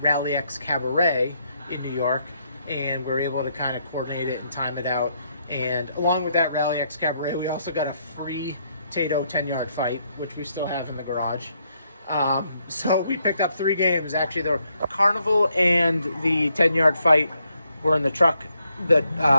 Rally X Cabaret in New York, and we were able to kind of coordinate it and time it out. And along with that Rally X Cabaret, we also got a free Tato 10-yard fight, which we still have in the garage. So we picked up 3 games. Actually, the Carnival and the 10-yard fight were in the truck, the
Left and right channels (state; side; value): inverted; both; correlation -0.75